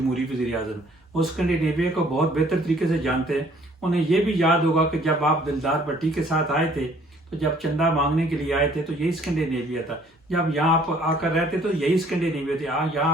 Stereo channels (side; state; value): both; normal; correlation 0.59